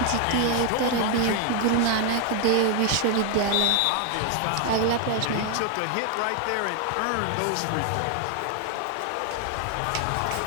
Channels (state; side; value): different; both; correlation 0.01